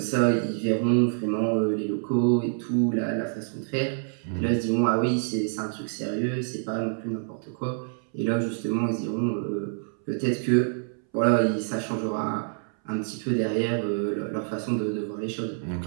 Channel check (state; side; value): silent; left; 60 dB below the other